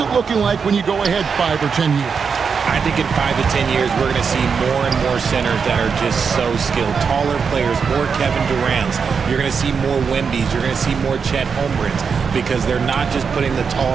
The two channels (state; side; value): quieter; left; 5.9 dB